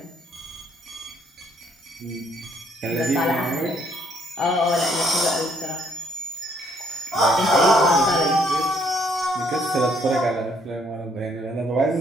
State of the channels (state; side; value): normal; both; correlation 0.67